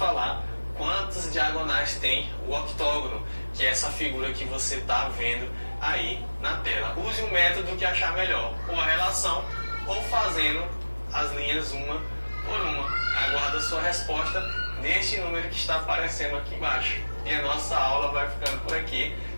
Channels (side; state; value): both; inverted; correlation -1.00